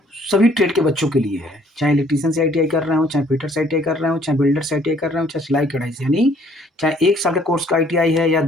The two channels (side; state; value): both; normal; correlation 0.61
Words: सभी ट्रेड के बच्चों के लिए है, चाहे इलेक्ट्रीशियन से आईटीआई कर रहे हो, चाहे फिटर से आईटीआई कर रहे हो, चाहे बिल्डर से आईटीआई कर रहे हो, चाहे सिलाई कढ़ाई से, यानी चाहे 1 साल के कोर्स का आईटीआई है या